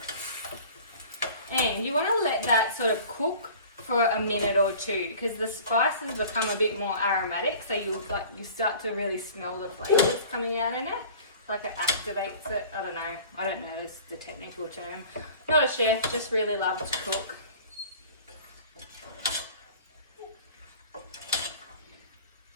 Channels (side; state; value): both; inverted; correlation -0.44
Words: And you want to let that sort of cook for a minute or 2 because the spices become a bit more aromatic, so you start to really smell the flavours coming out in it. It's like it activates it. I don't know this the technical term. Not a chef, just really love to cook.